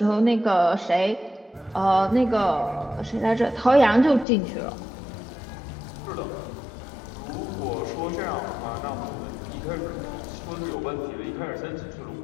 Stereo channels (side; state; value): right; drops out; at 4.2 s